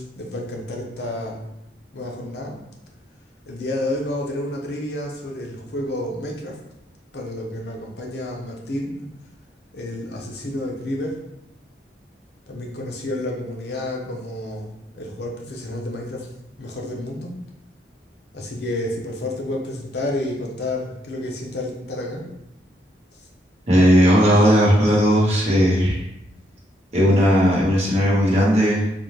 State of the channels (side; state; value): both; normal; correlation 0.73